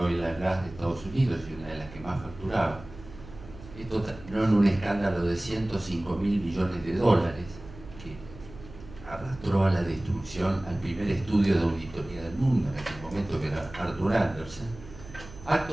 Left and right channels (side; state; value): right; noise; hum, 17 dB below the sound